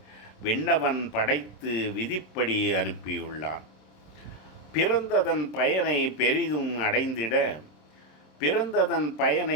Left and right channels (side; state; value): right; late; 27 ms